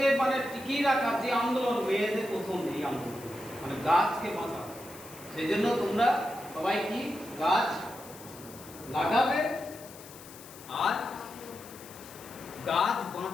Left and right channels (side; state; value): left; noise; hiss, 18 dB below the sound